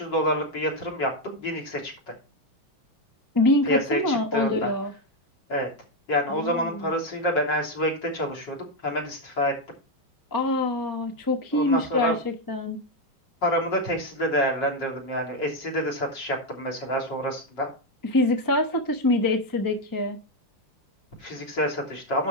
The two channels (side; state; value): both; normal; correlation 0.04